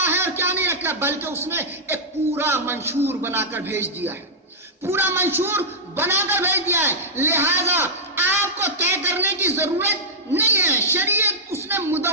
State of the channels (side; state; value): both; normal; correlation -0.10